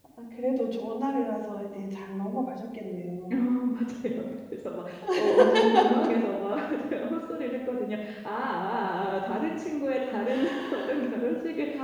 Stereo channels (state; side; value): identical; both; correlation 1.00